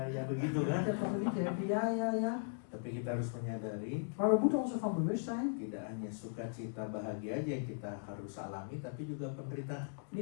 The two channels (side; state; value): right; silent; digital silence